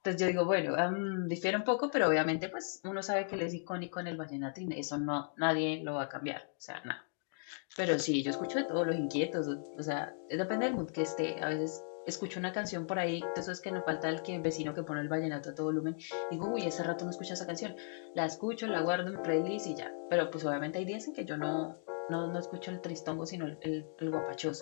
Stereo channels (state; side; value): silent; right; digital silence